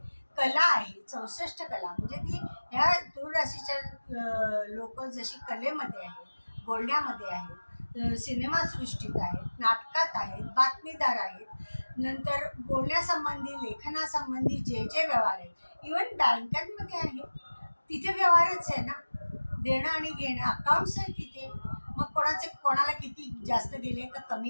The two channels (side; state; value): both; inverted; correlation -1.00